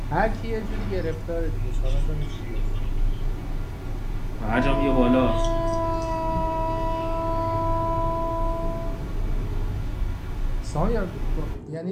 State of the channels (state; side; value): identical; both; correlation 1.00